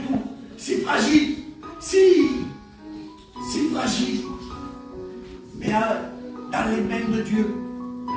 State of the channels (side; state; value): both; identical; correlation 1.00